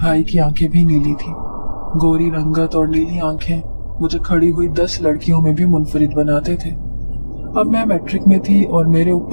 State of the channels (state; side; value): inverted; both; correlation -1.00